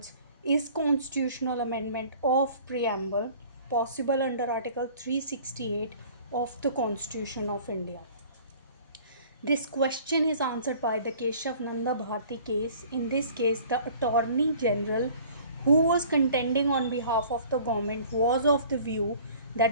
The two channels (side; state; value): both; inverted; correlation -0.50